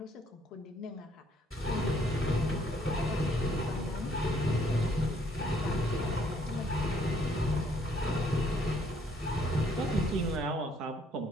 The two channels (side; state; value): both; normal; correlation 0.65